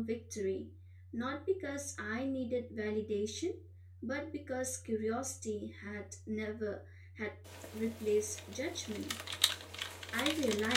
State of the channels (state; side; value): identical; both; correlation 1.00